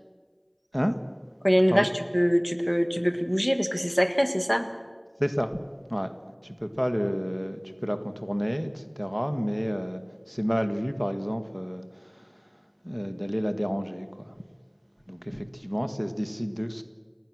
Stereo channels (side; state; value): both; identical; correlation 1.00